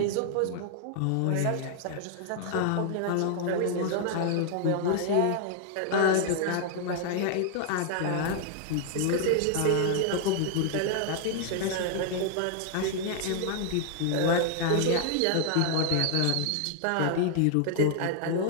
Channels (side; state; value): both; different; correlation 0.00